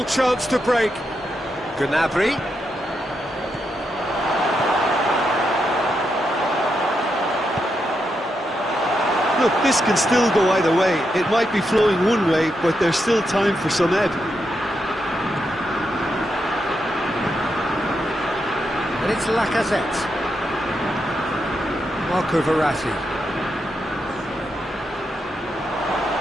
chance to break. Gnabry. Look, this can still go either way. It might be flowing one way, but there's still time for some ebb. And it's Lacazette. Marco Verratti.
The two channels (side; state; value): both; normal; correlation 0.83